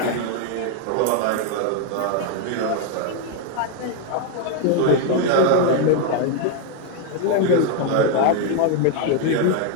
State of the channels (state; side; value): different; both; correlation 0.00